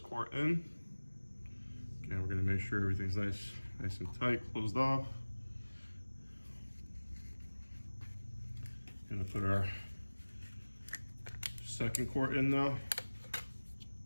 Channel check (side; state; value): both; inverted; correlation -1.00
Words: quart in. Again, we're gonna make sure everything's nice and tight, closed off. Gonna put our second quart in now.